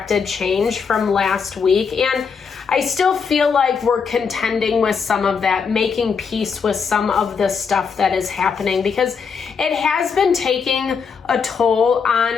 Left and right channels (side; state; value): right; quieter; 5.9 dB